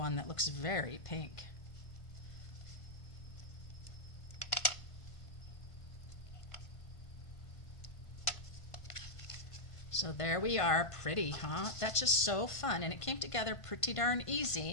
that looks very pink. So there we are, pretty, huh? That's just so fun, and it came together pretty darn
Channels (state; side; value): late; right; 1.5 ms